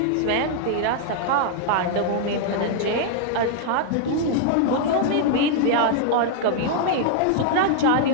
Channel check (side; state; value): both; different; correlation 0.00